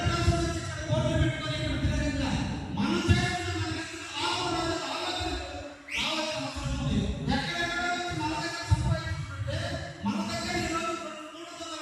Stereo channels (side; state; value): both; identical; correlation 1.00